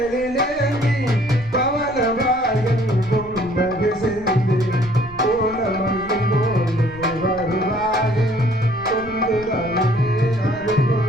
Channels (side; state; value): left; noise; rumble, 19 dB below the sound